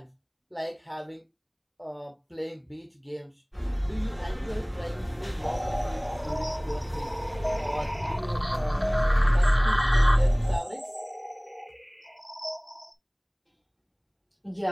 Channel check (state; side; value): identical; both; correlation 1.00